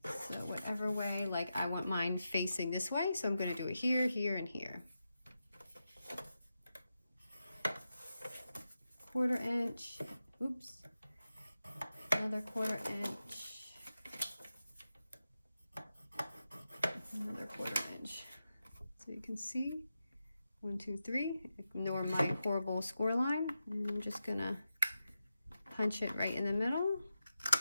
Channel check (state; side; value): inverted; both; correlation -0.90